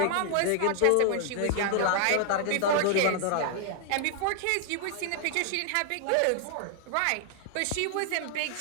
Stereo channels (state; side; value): different; both; correlation 0.00